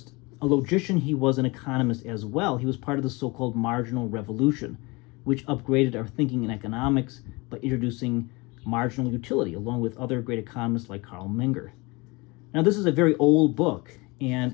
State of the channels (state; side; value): quieter; right; 25.4 dB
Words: a logician, he was an economist as well. He was part of the so-called Marginal Revolution, which upgraded our thinking in economics by introducing marginal utility, along with other great economists like Carl Menger. Now, this is a very old book,